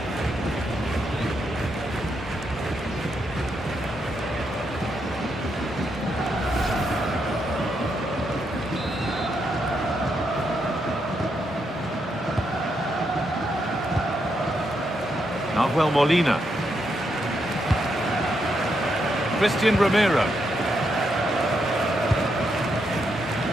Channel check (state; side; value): normal; both; correlation 0.80